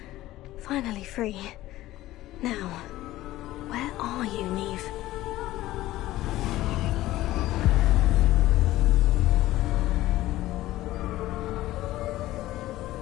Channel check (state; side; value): quieter; right; 15.9 dB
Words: Finally free. Now, Where are you, Neve?